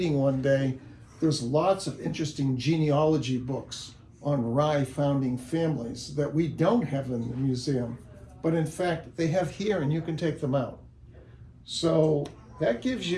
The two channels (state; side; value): identical; both; correlation 1.00